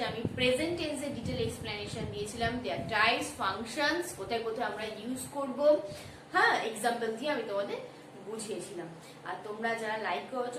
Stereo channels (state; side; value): identical; both; correlation 1.00